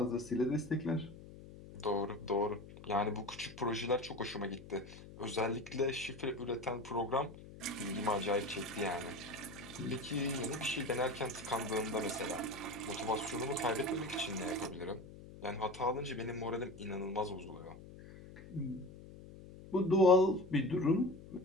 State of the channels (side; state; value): left; noise; hum, 16 dB below the sound